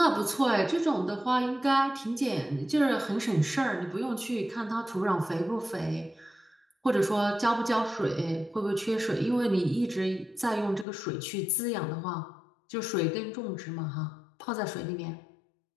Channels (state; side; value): drops out; right; at 10.9 s